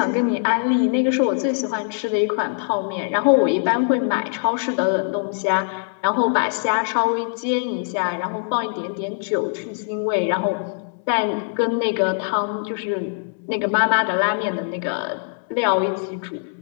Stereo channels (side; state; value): right; silent; 64 dB below the other